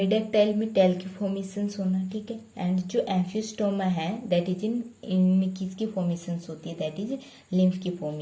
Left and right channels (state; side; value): identical; both; correlation 1.00